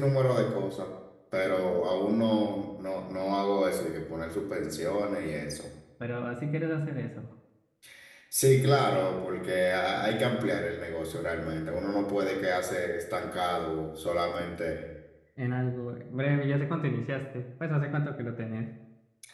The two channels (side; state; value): both; identical; correlation 1.00